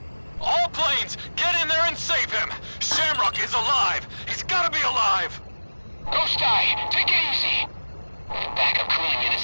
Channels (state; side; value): inverted; both; correlation -1.00